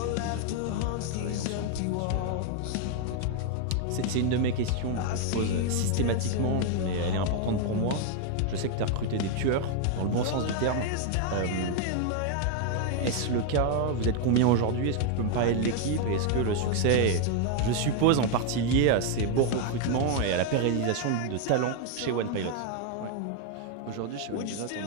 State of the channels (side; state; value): both; different; correlation 0.01